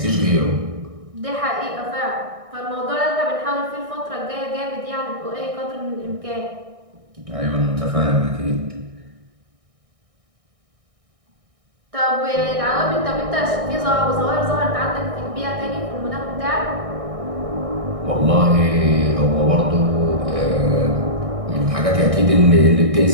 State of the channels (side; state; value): left; late; 1.6 ms